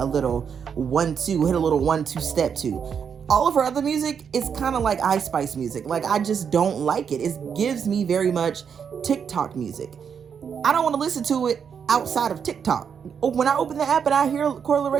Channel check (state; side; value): quieter; left; 7.1 dB